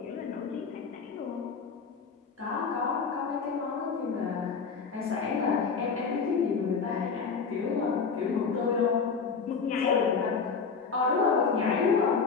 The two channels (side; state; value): right; quieter; 5.5 dB